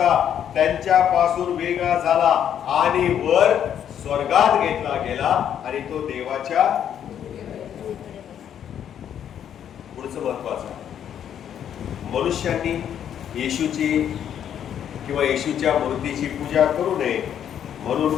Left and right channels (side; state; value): right; quieter; 9.4 dB